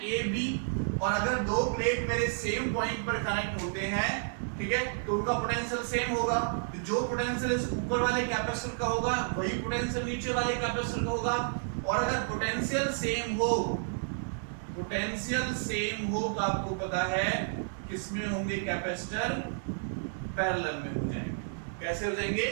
A B। और अगर दो प्लेट मेरे सेम पॉइंट पर कनेक्ट होते हैं, ठीक है, तो उनका पोटेंशियल सेम होगा। तो जो पोटेंशियल इस ऊपर वाले कैपेसिटर का होगा वही पोटेंशियल नीचे वाले कैपेसिटर का होगा। और अगर पोटेंशियल सेम हो, पोटेंशियल सेम हो तो आपको पता है किसमें होंगे कैपेसिटर, पैरेलल में हो जाएंगे। कैसे हो जाएंगे,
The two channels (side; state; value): left; silent; 57 dB below the other